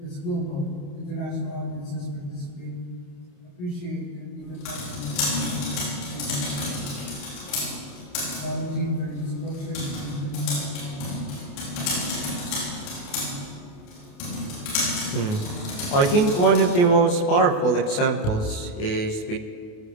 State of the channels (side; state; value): right; late; 28 ms